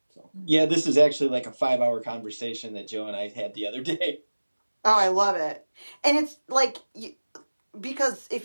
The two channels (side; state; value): both; inverted; correlation -1.00